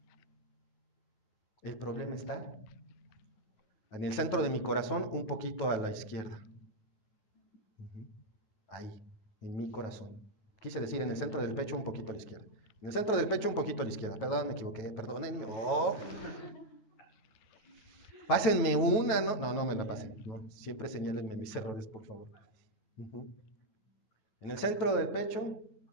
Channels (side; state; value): right; late; 9.3 ms